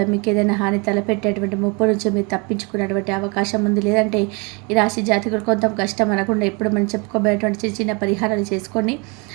మీకు ఏదైనా హాని తలపెట్టేటువంటి ముప్పు నుంచి మీరు తప్పించుకునేటువంటి అవకాశం ఉంది. లేదంటే ఈ రాశి జాతకులు కొంత కష్టం అనకుండా ఎప్పుడు మనం చెప్పుకోబోయేటువంటి చిన్న చిన్న పరిహారాలు చేసుకోండి.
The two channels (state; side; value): quieter; left; 30.6 dB